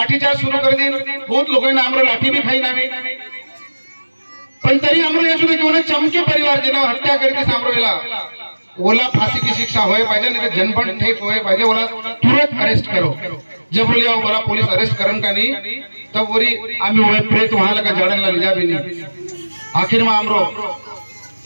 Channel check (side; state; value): both; inverted; correlation -1.00